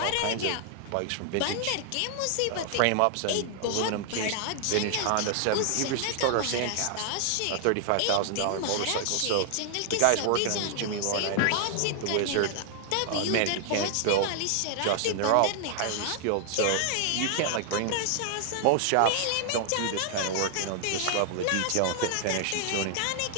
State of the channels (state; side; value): different; both; correlation 0.00